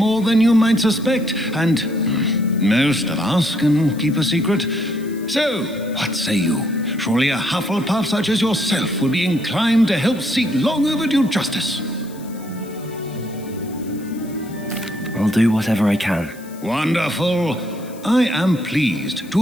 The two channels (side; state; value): left; noise; hiss, 22 dB below the sound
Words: than you might suspect, and most of us can keep a secret. So, what say you? Surely a Hufflepuff such as yourself would be inclined to help seek long overdue justice. I'll do whatever I can. Wonderful. I am pleased